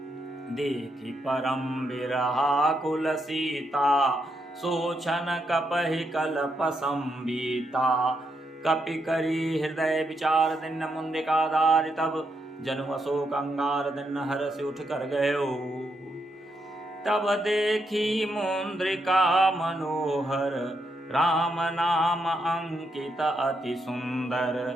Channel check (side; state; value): both; normal; correlation 0.80